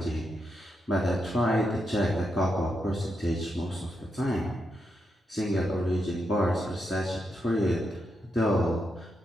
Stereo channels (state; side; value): normal; both; correlation 0.83